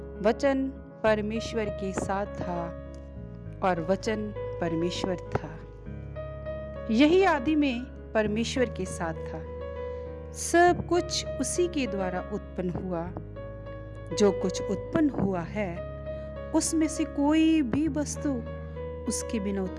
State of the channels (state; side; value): identical; both; correlation 1.00